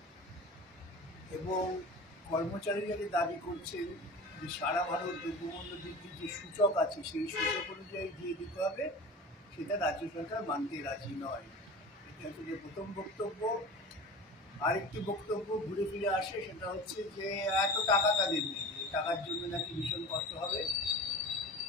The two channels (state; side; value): normal; both; correlation 0.35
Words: এবং কর্মচারীরা যে দাবি করছেন যে সারা ভারত দ্রব্যমূল্য বৃদ্ধির যে সূচক আছে সেই সূচক অনুযায়ী দিয়ে দিতে হবে, সেটা রাজ্য সরকার মানতে রাজি নয়। এটা হচ্ছে প্রথম বক্তব্য। আরেকটি বক্তব্য ঘুরে ফিরে আসে, সেটা হচ্ছে যে এত টাকা তাদের নেই, টাকার জন্য নাকি ভীষণ কষ্ট হবে।